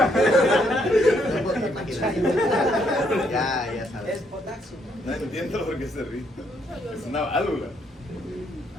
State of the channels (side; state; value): both; normal; correlation 0.72